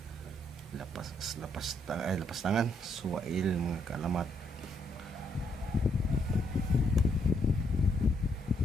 lapas tangan, suwail mga kalamat.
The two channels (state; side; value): normal; both; correlation 0.74